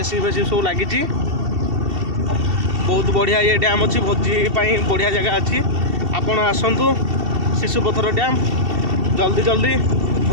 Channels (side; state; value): left; late; 2.7 ms